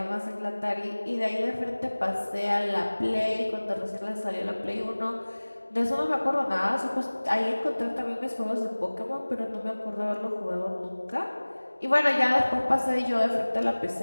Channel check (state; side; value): inverted; both; correlation -1.00